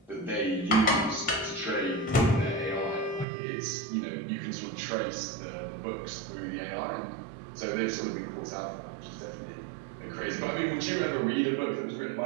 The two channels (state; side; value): drops out; left; at 3.2 s